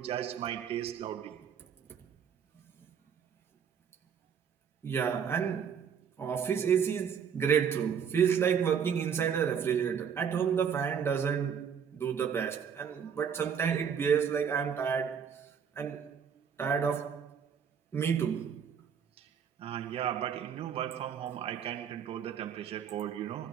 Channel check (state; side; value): quieter; left; 7.5 dB